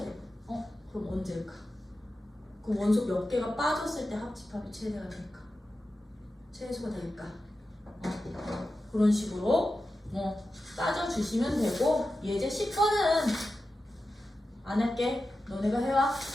돼요. 그럼 언제일까? 그럼 원소 몇 개가 빠졌을 때 합집합이 최대가 될까? 최소가 될까? 그런 식으로 따져주시면 되고 예제 10번은 안 할게. 너네가 해와.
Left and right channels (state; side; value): normal; both; correlation 0.92